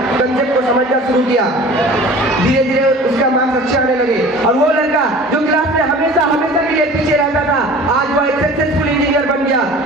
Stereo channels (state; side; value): normal; both; correlation 0.43